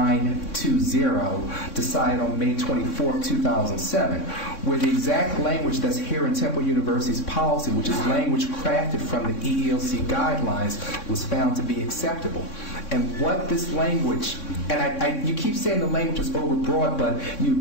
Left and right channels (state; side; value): late; right; 3.6 ms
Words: decided on May 24, 2007, where the exact language that's here in Temple University's policy, which is language crafted from the EEOC guidelines, was found to be acceptable. And what this language, and you keep saying the language is overbroad, but